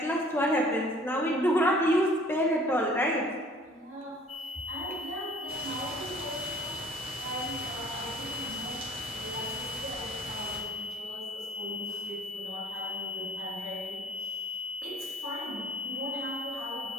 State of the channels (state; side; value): normal; both; correlation 0.54